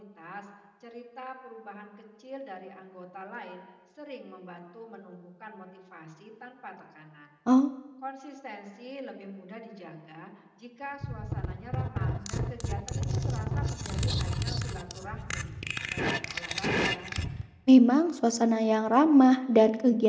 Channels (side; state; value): both; identical; correlation 1.00